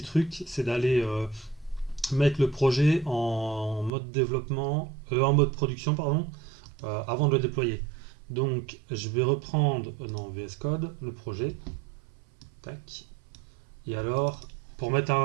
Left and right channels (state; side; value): drops out; left; at 3.9 s